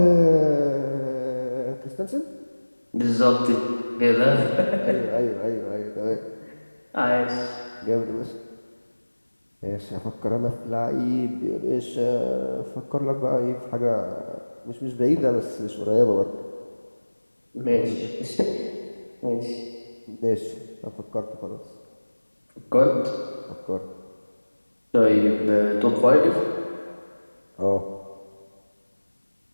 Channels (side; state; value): both; inverted; correlation -1.00